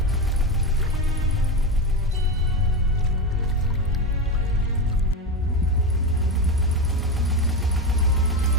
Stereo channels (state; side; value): normal; both; correlation 0.16